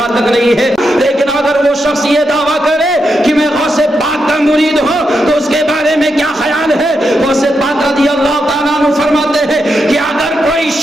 تک نہیں ہے، لیکن اگر وہ شخص یہ دعویٰ کرے کہ میں غوث پاک کا مرید ہوں تو اس کے بارے میں کیا خیال ہے؟ غوث پاک رضی اللہ تعالیٰ عنہ فرماتے ہیں کہ اگر کوئی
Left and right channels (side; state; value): both; normal; correlation 0.84